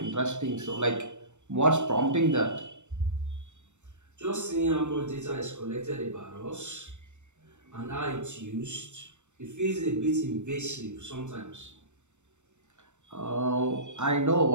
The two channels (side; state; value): left; late; 0.84 ms